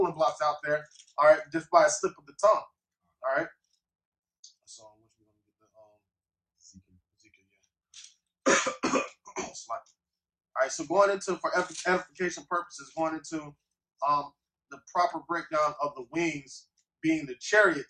blocks out there. All right, just by a slip of the tongue. All right. So, which we're gonna get the Ezekiel, yeah. All right, so going into, for edification purposes, going into the proper breakdown of the wings being the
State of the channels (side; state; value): both; identical; correlation 1.00